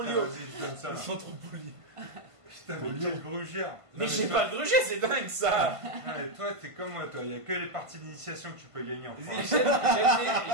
vas-y, je donne ça. Ils sont trop polis. Putain, mais quel grugère! Mais j'ai pas de gruger, c'est dingue ça. Et toi, t'es comme moi, toi. Il y a que les parties d'initiation que tu peux gagner en France.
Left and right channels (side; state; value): left; late; 1.5 ms